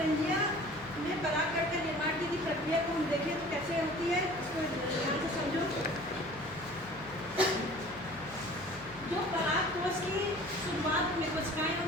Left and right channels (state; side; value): noise; left; hum, 20 dB below the sound